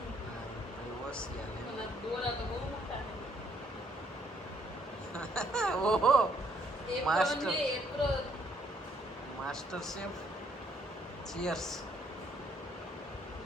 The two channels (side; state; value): both; normal; correlation 0.68